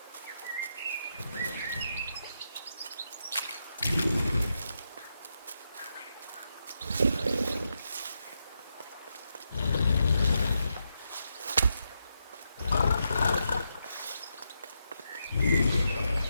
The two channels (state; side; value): inverted; both; correlation -0.84